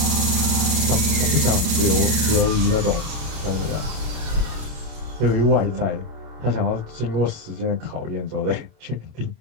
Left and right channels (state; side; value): late; left; 27 ms